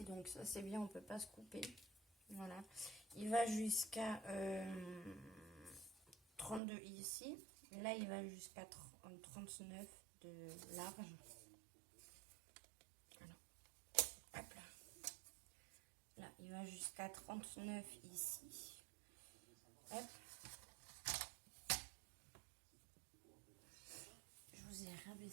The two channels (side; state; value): left; drops out; at 6.6 s